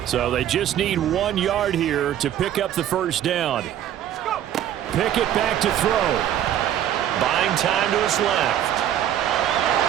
So they just need 1 yard here to pick up the 1st down. Pickett back to throw. Buying time to his left.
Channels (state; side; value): quieter; left; 11.1 dB